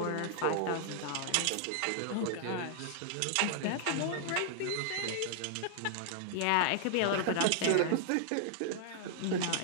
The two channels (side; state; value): both; different; correlation -0.01